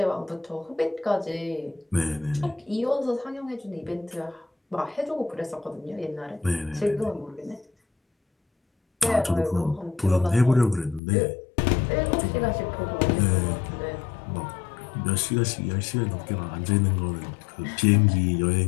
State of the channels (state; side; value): drops out; right; at 11.0 s